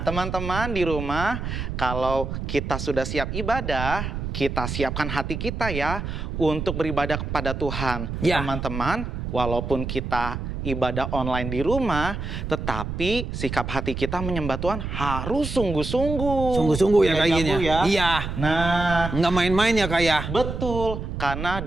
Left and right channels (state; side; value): noise; right; rumble, 5 dB below the sound